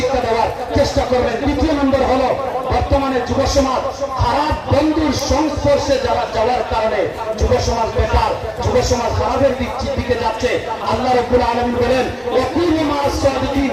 দেওয়ার চেষ্টা করবেন। দ্বিতীয় নম্বর হলো, বর্তমানে যুব সমাজ খারাপ বন্ধুর সংস্পর্শে যাওয়ার কারণে যুব সমাজ বেকার, যুব সমাজ খারাপের দিকে যাচ্ছে। আল্লাহ রাব্বুল আলামিন বলেন, ওয়াকুনু মা'আস সাদিকিন,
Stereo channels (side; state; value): both; identical; correlation 1.00